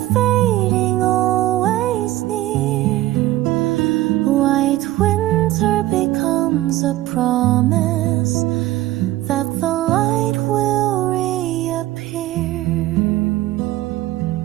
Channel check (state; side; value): quieter; left; 16.0 dB